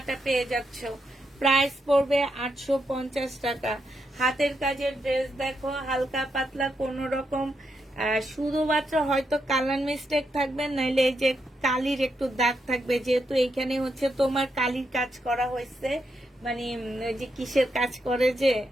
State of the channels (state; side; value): normal; both; correlation 0.82